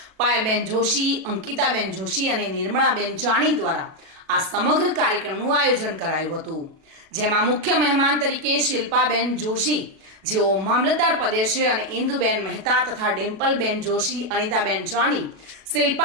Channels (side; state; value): left; late; 37 ms